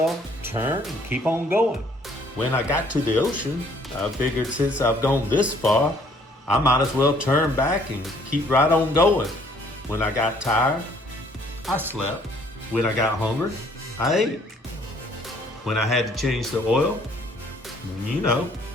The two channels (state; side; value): normal; both; correlation 0.61